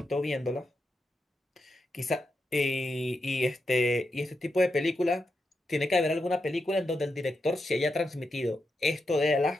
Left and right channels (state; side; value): normal; both; correlation 0.86